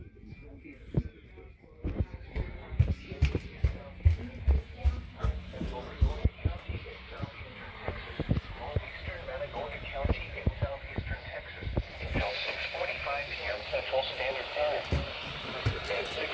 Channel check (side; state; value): both; identical; correlation 1.00